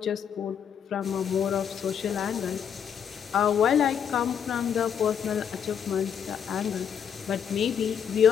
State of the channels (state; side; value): quieter; right; 8.0 dB